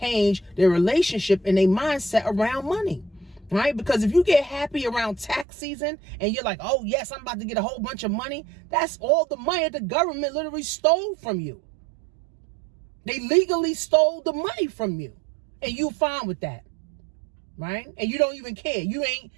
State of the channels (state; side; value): drops out; left; at 5.5 s